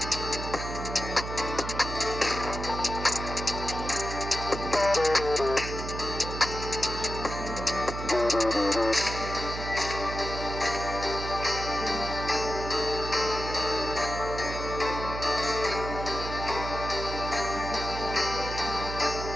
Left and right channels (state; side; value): noise; right; hum, 6 dB below the sound